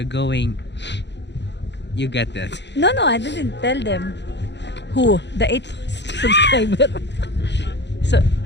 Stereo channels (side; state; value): right; late; 0.51 ms